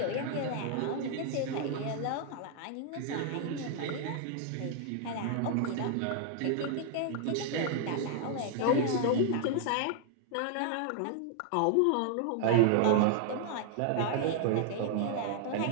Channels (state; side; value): different; both; correlation 0.00